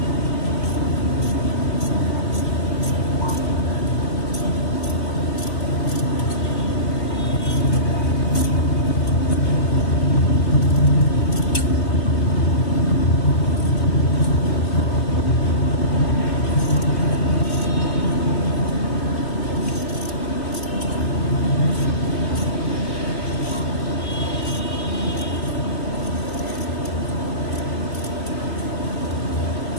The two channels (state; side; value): late; right; 3.2 ms